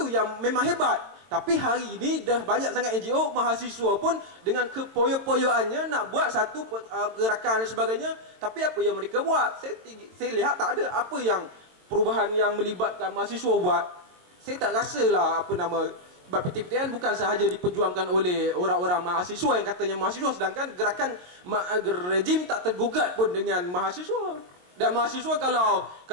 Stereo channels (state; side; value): late; left; 22 ms